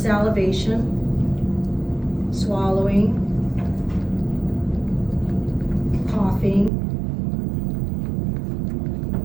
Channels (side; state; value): left; drops out; at 6.7 s